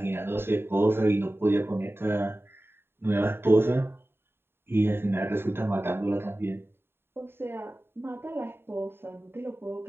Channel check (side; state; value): left; late; 0.11 ms